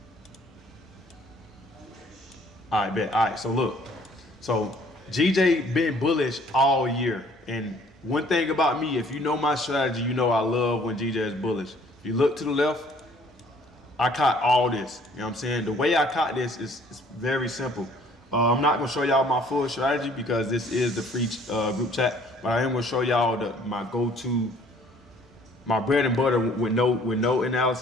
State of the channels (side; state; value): both; normal; correlation 0.58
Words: All right, bet. All right, so look. So GJ been bullish all year. And one thing about me, if you know my strategy, you know I love when GJ is bullish. If you look to the left, I caught all this. You know what I'm saying? The way I caught this is very simple. I'm not gonna show y'all my full strategy because this is the free group chat, but I am gonna show y'all my go-to, my bread and butter with no